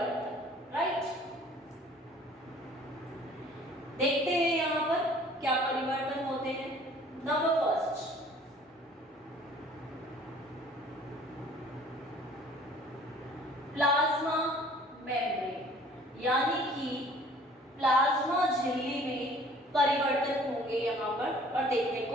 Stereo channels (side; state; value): both; normal; correlation 0.52